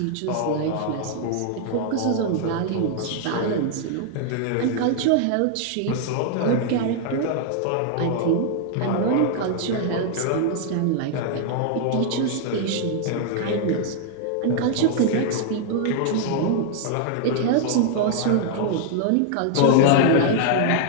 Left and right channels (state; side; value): different; both; correlation -0.01